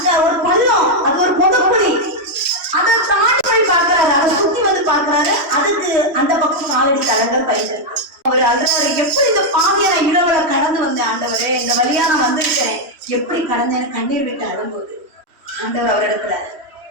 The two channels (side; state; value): left; late; 3.1 ms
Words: ஒரு பள்ளம், அது ஒரு பொதுக்குழி. அதை தாண்டி போய் பார்க்கிறாரு. அதை சுத்தி வந்து பார்க்கிறாரு. அதுக்கு அந்த பக்கம் காலடி தடங்கள் பயின்று அவர் அழுறாரு. எப்படி இந்த பாதையை நான் இரவுல கடந்து வந்தேன் ஆண்டவரே, இந்த வழியா நான் வந்திருக்கேன், எப்படி கடந்தேன்னு கண்ணீர் விட்டு அழும்போது ஆண்டவர் அவரிடத்துல